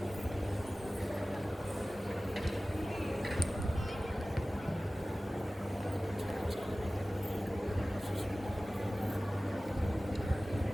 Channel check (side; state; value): both; normal; correlation 0.97